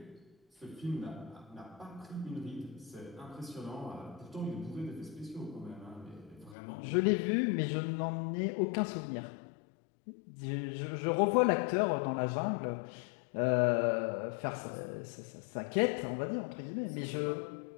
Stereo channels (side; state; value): right; drops out; at 6.6 s